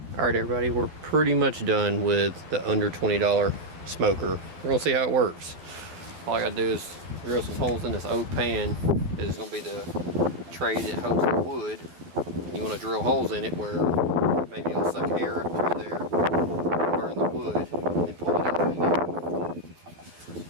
Alright everybody, we're pretty much done with the under $20 smoker. We're gonna see how it works. All I gotta do is drill some holes in this oak pan. This is gonna be the tray that holds the wood. You wanna drill holes in it where maybe it'll suck air up through there, burn the wood, and then pull it out through there.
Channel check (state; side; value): late; left; 12 ms